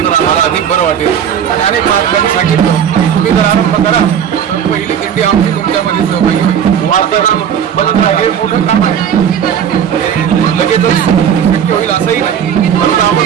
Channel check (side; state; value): left; quieter; 8.6 dB